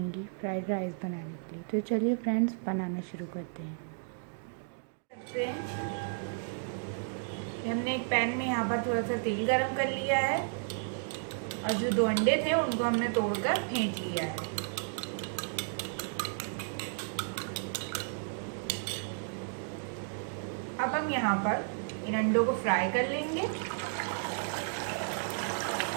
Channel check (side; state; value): left; silent; digital silence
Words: फ्राइड राइस बनाने के लिए। तो चलिए फ्रेंड्स, बनाना शुरू करते हैं। हमने एक पैन में यहाँ पर थोड़ा सा तेल गरम कर लिया है और जो 2 अंडे थे उनको हमने तोड़कर फेंट लिया है। अब हम यहाँ पर इन अंडों को फ्राई कर लेंगे।